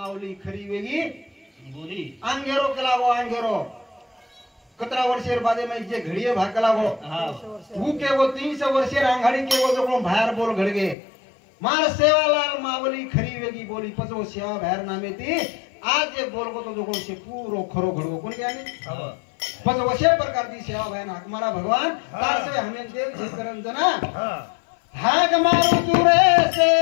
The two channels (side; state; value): right; drops out; at 11.0 s